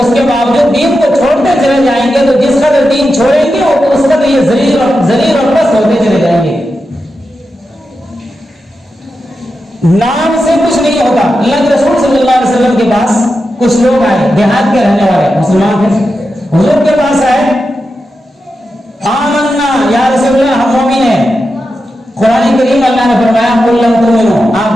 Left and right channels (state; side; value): normal; both; correlation 0.89